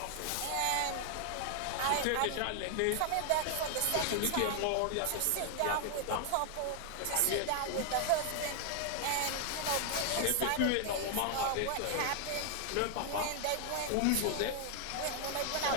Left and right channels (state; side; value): different; both; correlation 0.00